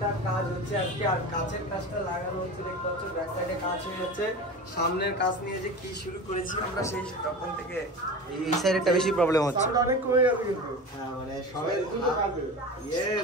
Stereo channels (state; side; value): normal; both; correlation 0.31